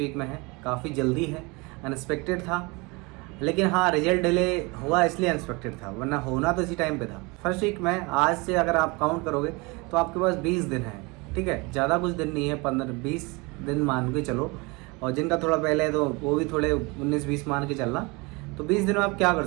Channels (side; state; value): left; quieter; 26.8 dB